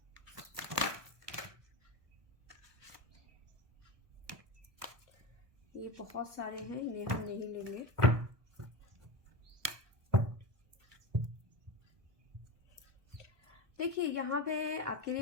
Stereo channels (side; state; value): left; late; 1.2 ms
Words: ये बहुत सारे हैं, इन्हें हम नहीं लेंगे। देखिए यहाँ पे आपके